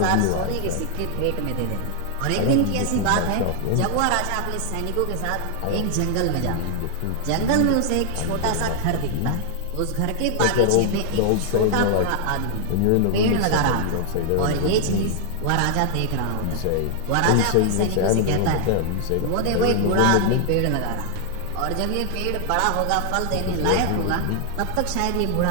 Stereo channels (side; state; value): both; different; correlation 0.00